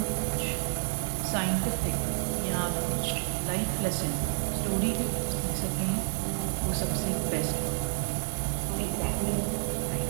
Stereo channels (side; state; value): left; silent; 58 dB below the other